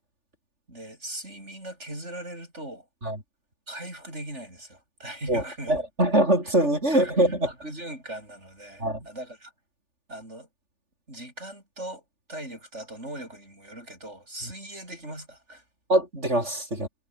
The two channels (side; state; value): left; late; 3.4 ms